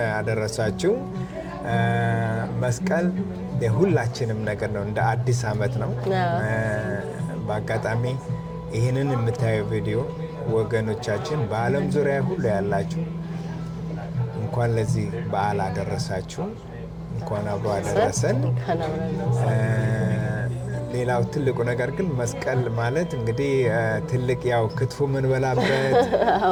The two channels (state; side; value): identical; both; correlation 1.00